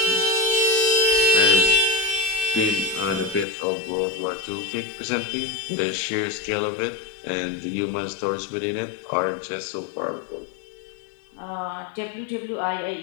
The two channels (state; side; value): drops out; right; at 3.5 s